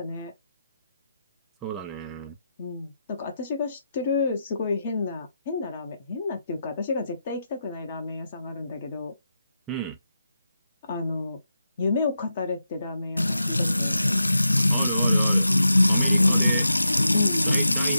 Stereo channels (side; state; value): both; inverted; correlation -0.88